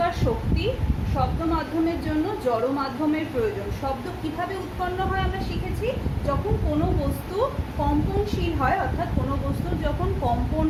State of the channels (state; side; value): identical; both; correlation 1.00